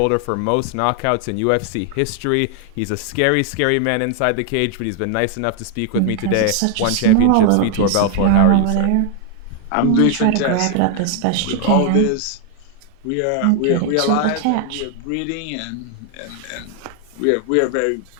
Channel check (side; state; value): both; different; correlation 0.00